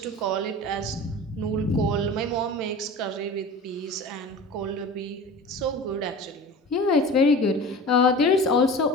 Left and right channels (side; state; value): both; normal; correlation 0.36